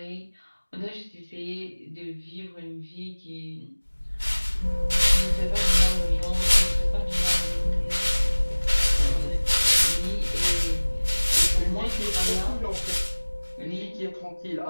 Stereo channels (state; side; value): inverted; both; correlation -1.00